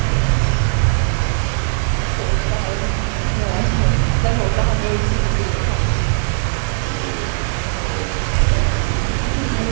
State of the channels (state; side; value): silent; left; 67 dB below the other